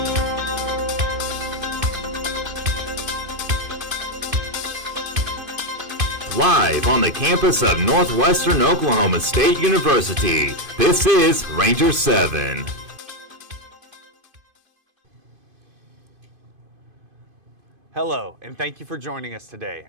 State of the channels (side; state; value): left; late; 2.5 ms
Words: Live on the campus of Northwestern Oklahoma State University, this is Ranger 7. Hello, and thank you for joining us today.